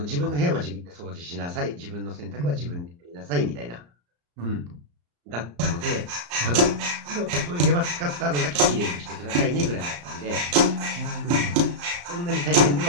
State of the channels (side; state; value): left; late; 34 ms